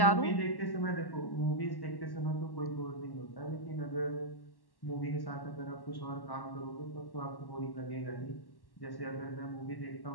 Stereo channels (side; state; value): right; late; 1.1 ms